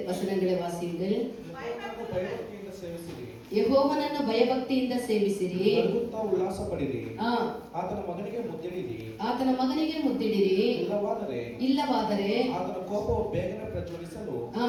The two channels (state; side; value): identical; both; correlation 1.00